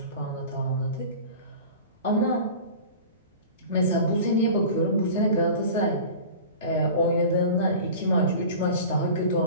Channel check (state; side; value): inverted; both; correlation -0.37